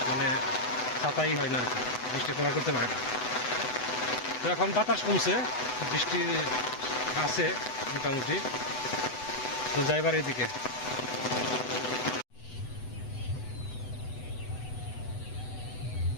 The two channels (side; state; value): right; late; 8.0 ms